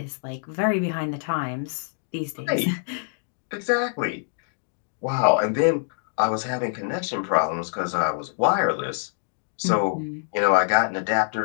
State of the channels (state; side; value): silent; right; digital silence